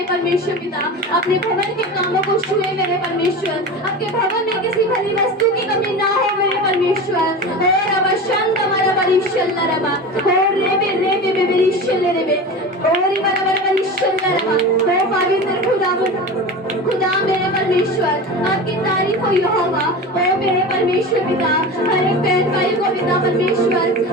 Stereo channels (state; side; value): normal; both; correlation 0.29